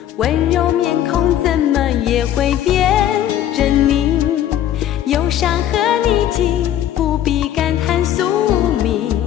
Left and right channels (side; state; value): right; quieter; 11.4 dB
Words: 温柔面孔怎么也会变狰狞？忧伤和逆境，不必感叹宿命，